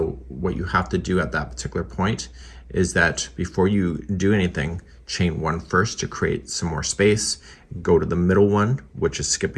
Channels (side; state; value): both; identical; correlation 1.00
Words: what you have to do at that particular point is that before you do anything, chain 1 first to create some more space, go to the middle one, which is